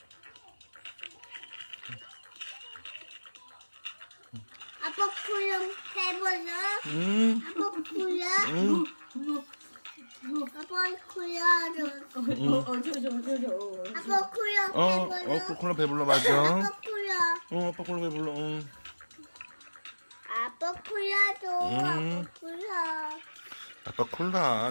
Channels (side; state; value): both; inverted; correlation -1.00